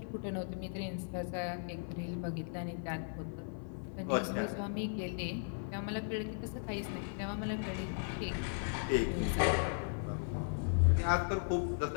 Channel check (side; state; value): right; silent; 53 dB below the other